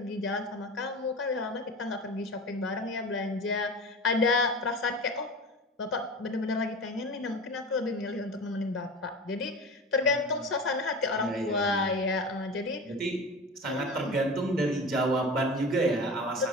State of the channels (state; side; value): normal; both; correlation 0.31